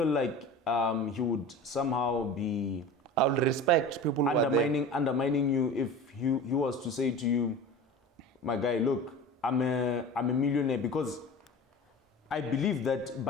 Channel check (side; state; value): both; normal; correlation 0.35